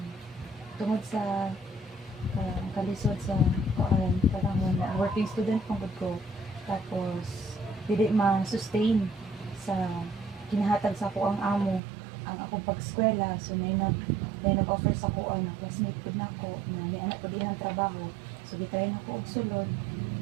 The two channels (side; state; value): left; drops out; at 11.8 s